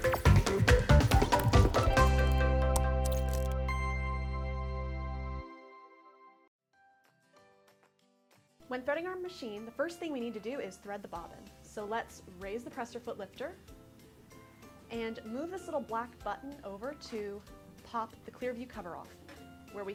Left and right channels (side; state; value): both; identical; correlation 1.00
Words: threading our machine, the first thing we need to do is thread the bobbin. So let's raise the presser foot lifter and move this little black button over to pop the clear view cover off, where we